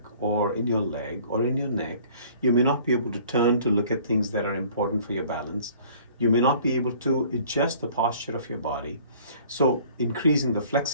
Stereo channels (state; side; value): inverted; both; correlation -0.53